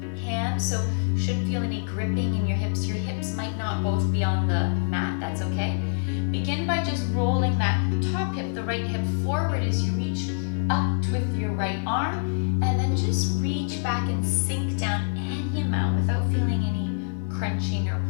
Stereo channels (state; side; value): silent; right; digital silence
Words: hand, so shouldn't feel any gripping in your hips. Your hips might not both be on the mat, that's okay. Begin by just rolling that top hip, the right hip forward as you reach up with your right arm, and then just reach back and sink down any amount without feeling any crunching or